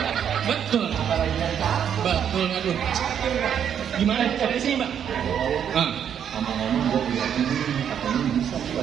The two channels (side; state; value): left; quieter; 8.7 dB